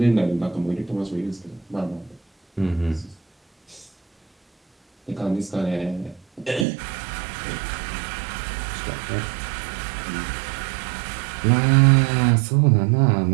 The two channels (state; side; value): drops out; left; at 6.7 s